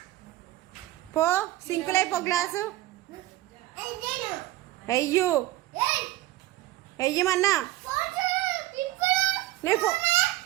పో, సింకులైపో గ్లాసు. అయ్యో అయ్యమన్నా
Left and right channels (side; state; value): left; quieter; 16.5 dB